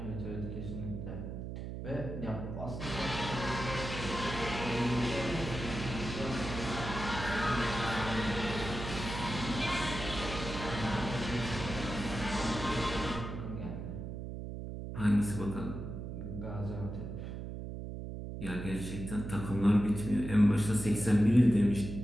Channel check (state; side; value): noise; right; hum, 7 dB below the sound